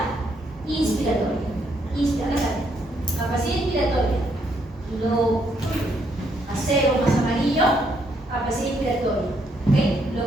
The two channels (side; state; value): both; normal; correlation 0.73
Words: inspiratoria. Capacidad inspiratoria. Lo acero más amarillo, capacidad inspiratoria. ¿Okay? Lo